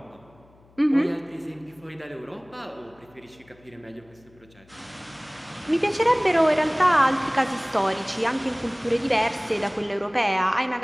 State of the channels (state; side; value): noise; left; hum, 28 dB below the sound